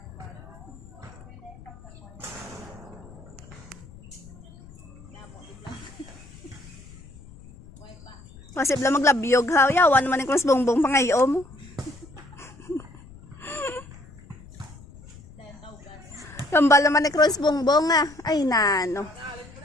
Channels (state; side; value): noise; left; rumble, 20 dB below the sound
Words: Kasi bla maglabyog ha. Yawan naman yung kung bongbong pangayom. Kambal naman ni Cross bongbong ah. Ay nano.